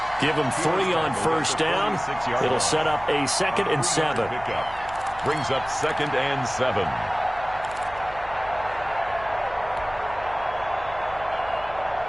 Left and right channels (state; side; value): noise; right; hum, 18 dB below the sound